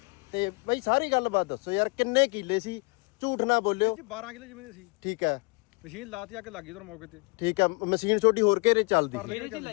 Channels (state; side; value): quieter; right; 29.9 dB